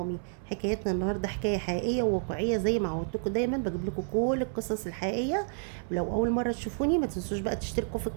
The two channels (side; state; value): left; silent; 58 dB below the other